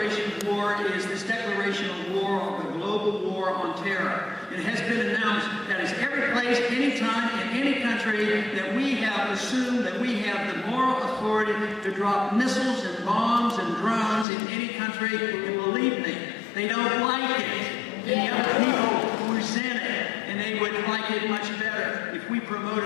of war is this declaration of war, the global war on terror. It has been announced that is every place, anytime, in any country that we have assumed that we have the moral authority to drop missiles and bombs and drones in any country. And believe me, they don't like it. And the other people resent it. And they would like it much better if we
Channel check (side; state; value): right; drops out; at 14.2 s